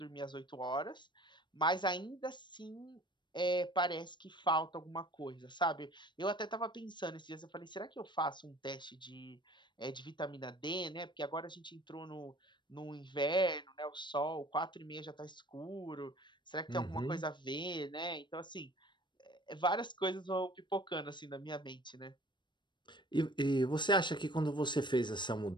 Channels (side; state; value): right; late; 0.22 ms